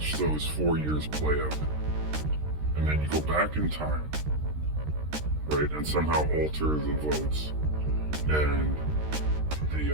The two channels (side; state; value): left; late; 13 ms